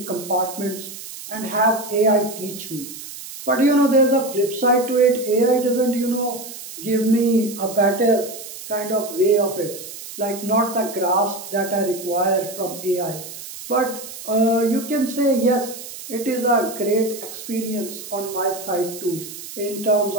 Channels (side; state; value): right; noise; hiss, 12 dB below the sound